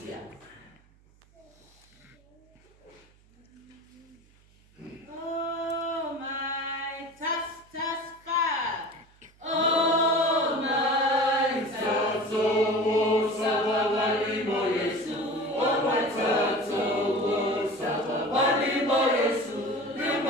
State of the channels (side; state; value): right; noise; hum, 30 dB below the sound